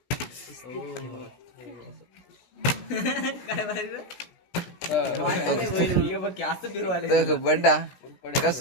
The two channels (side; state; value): right; late; 16 ms